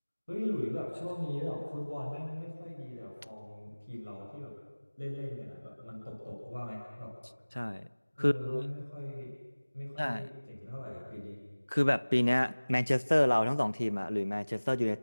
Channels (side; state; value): both; inverted; correlation -1.00